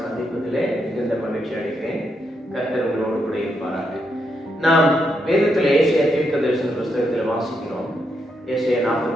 சந்திப்பதிலே மிகுந்த மகிழ்ச்சி அடைகிறேன். கர்த்தர் உங்களோடு கூட இருப்பாராக. நாம் வேதத்தில் ஏசாயா தீர்க்கதரிசன புஸ்தகத்தில் வாசிக்கிறோம். ஏசாயா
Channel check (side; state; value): both; normal; correlation 0.80